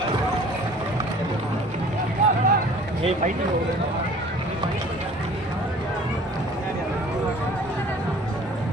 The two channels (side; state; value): both; normal; correlation 0.49